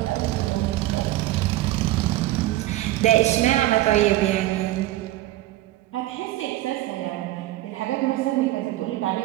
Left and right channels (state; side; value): quieter; left; 15.9 dB